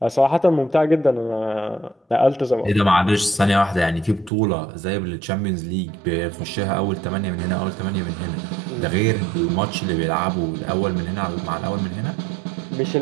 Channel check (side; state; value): left; drops out; at 4.3 s